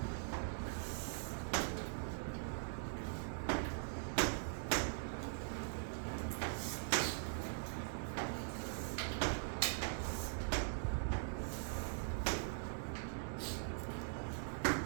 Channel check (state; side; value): silent; left; digital silence